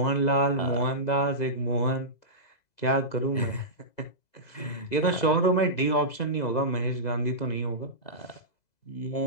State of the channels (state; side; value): late; right; 2.0 ms